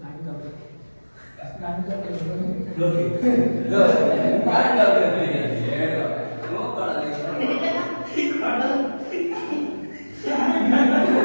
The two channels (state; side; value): inverted; both; correlation -1.00